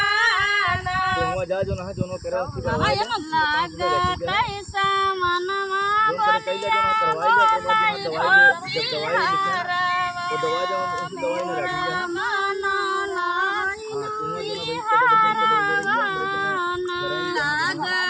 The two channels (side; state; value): both; identical; correlation 1.00